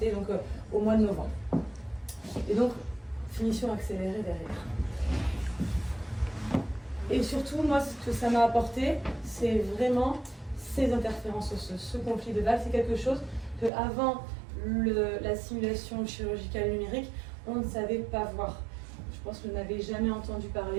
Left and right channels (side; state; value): left; drops out; at 13.7 s